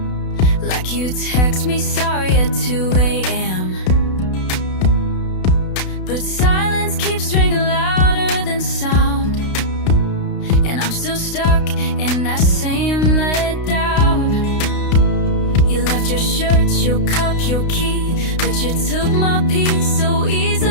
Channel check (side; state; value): right; late; 32 ms